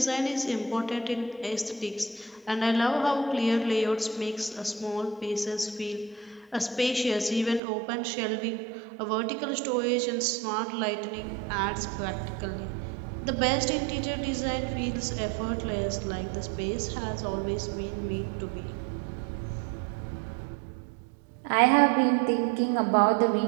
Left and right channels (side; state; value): left; drops out; at 7.6 s